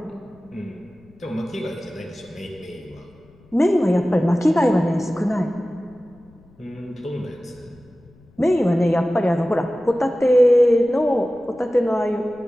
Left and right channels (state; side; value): noise; left; rumble, 29 dB below the sound